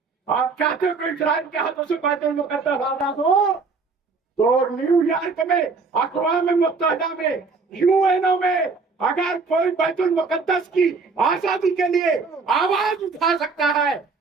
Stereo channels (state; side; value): quieter; left; 4.5 dB